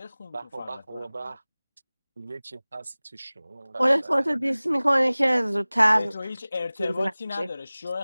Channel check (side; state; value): both; inverted; correlation -0.99